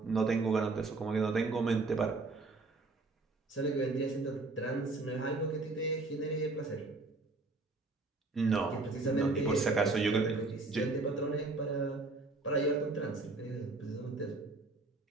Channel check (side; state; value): left; quieter; 3.5 dB